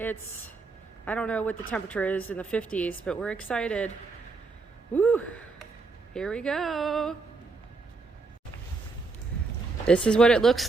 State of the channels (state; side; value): quieter; left; 4.0 dB